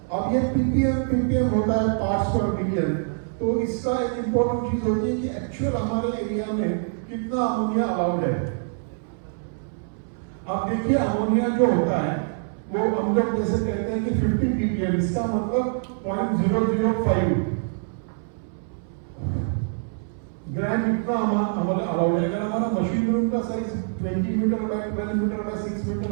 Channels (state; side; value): silent; left; 62 dB below the other